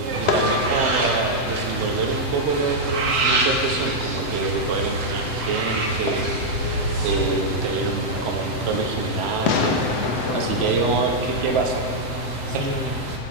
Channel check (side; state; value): right; late; 7.8 ms